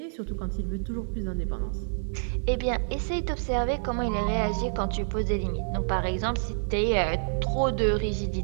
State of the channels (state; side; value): silent; left; 59 dB below the other